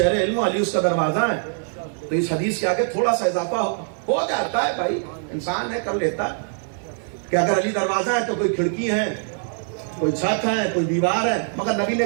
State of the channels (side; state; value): left; silent; 56 dB below the other